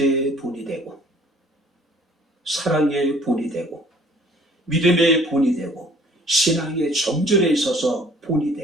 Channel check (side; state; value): both; normal; correlation 0.54